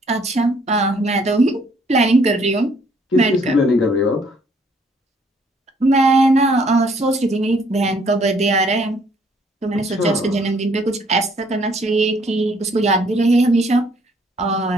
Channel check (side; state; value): both; normal; correlation 0.64